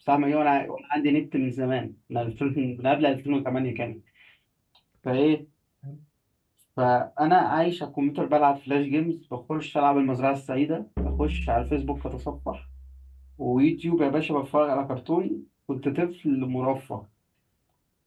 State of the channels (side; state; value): both; identical; correlation 1.00